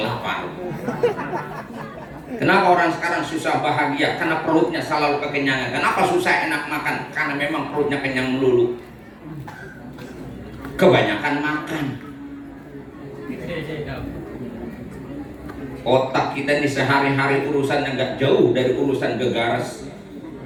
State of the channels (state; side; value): identical; both; correlation 1.00